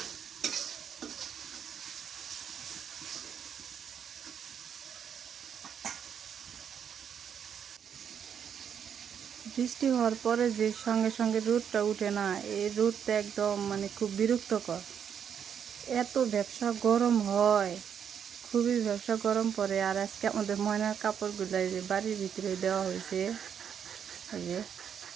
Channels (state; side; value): quieter; left; 8.1 dB